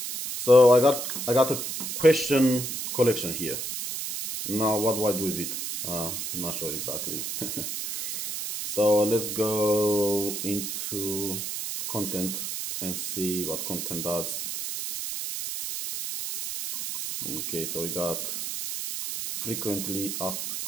So I got a question collection here. Now what do I do with it? I'm not sure exactly. So let's go into content and see what content does. Okay, so we got frequently asked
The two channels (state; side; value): noise; right; hiss, 4 dB below the sound